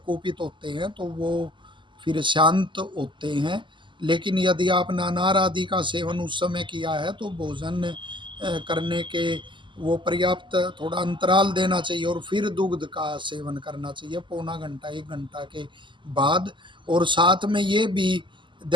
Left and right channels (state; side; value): late; left; 0.24 ms